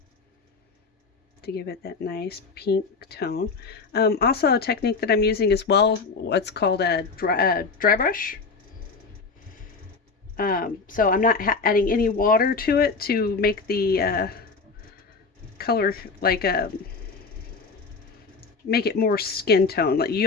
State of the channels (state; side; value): quieter; right; 4.5 dB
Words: to give it that nice pink tone. Also, a technique that I'm using as well, what's called a dry brush. So I'm not adding any water to it to make the color like make it more skin tone. Like,